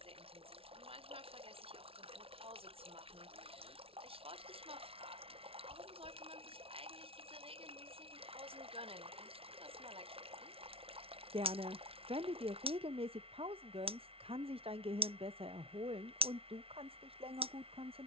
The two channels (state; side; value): late; left; 0.27 ms